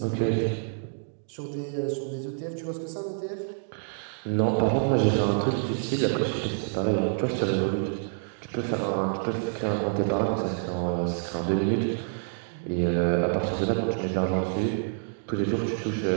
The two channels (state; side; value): silent; left; digital silence